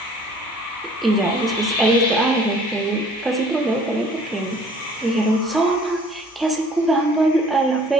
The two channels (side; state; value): both; normal; correlation 0.53